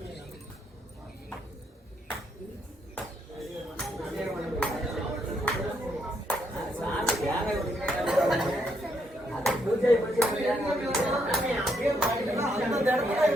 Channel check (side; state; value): both; normal; correlation 0.76